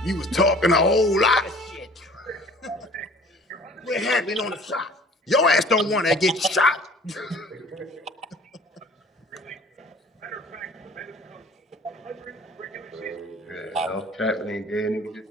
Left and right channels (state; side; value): normal; both; correlation 0.49